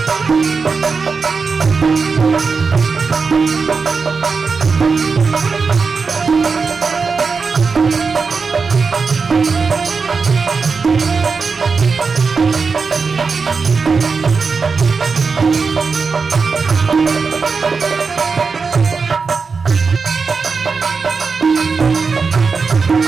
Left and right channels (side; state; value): left; quieter; 4.9 dB